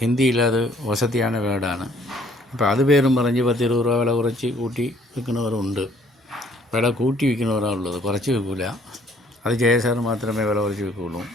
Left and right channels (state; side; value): normal; both; correlation 0.61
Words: അത് വസതിயான വേർഡാണ്. അപ്പോൾ അത് പേരും പറഞ്ഞ് 10-20 രൂപ വില കുറച്ച് കൂട്ടി വിൽക്കുന്നവരുണ്ട്. വില കൂട്ടി വിൽക്കുന്നവരാണ് ഉള്ളത്, കുറച്ച് വിൽക്കില്ല. അത് ജയസാർ മാത്രമേ വില കുറച്ച് വിൽക്കുകയുള്ളൂ.